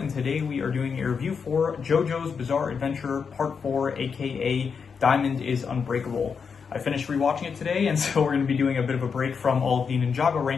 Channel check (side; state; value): right; quieter; 6.0 dB